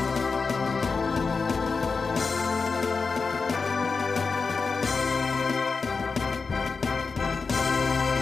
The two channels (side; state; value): right; quieter; 4.7 dB